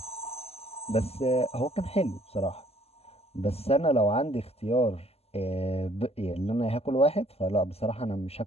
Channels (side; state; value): right; late; 0.29 ms